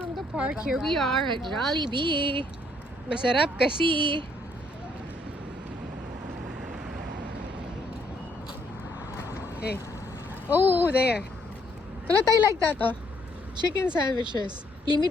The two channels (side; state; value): both; normal; correlation 0.69